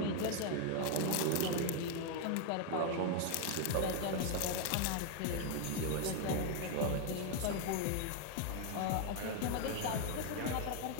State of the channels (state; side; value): different; both; correlation 0.01